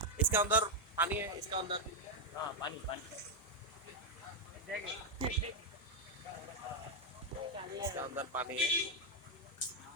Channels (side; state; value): both; normal; correlation 0.01